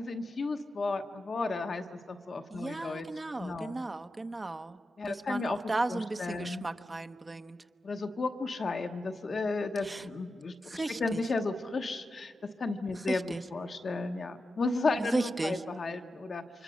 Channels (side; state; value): both; normal; correlation 0.90